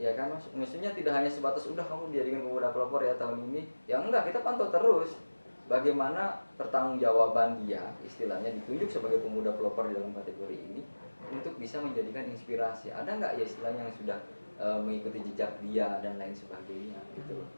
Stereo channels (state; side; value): inverted; both; correlation -1.00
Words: kan Mas, maksudnya tidak hanya sebatas udah kamu dijadikan Pemuda Pelopor ya tahun ini, ya enggak, kita pantau terus bagaimana pertanggungjawaban dia, istilahnya ditunjuk sebagai Pemuda Pelopor di dalam kategori ini untuk bisa menjadikan inspirasi. Ada nggak ya istilahnya yang sudah mengikuti jejak dia dan lain sebagainya gitu loh.